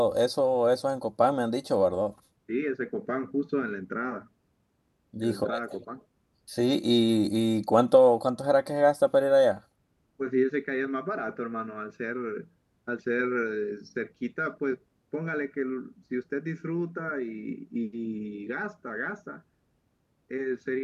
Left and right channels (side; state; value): both; identical; correlation 1.00